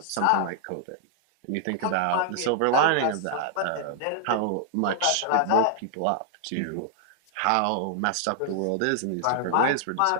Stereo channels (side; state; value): both; different; correlation -0.01